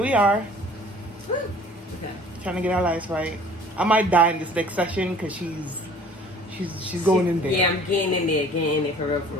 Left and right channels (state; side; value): normal; both; correlation 0.50